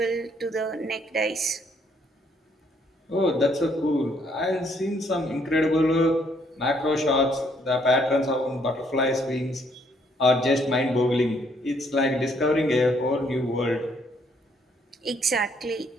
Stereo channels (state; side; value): normal; both; correlation 0.68